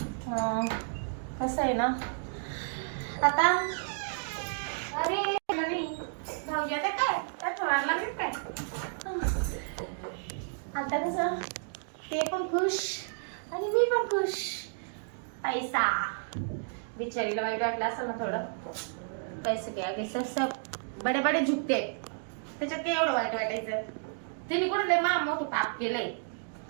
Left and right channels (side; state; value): left; silent; digital silence